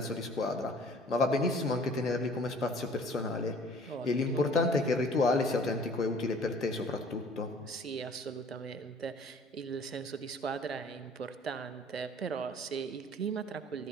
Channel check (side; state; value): both; normal; correlation 0.51